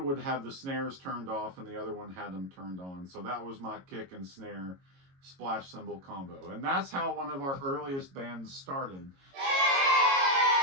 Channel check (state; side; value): late; left; 22 ms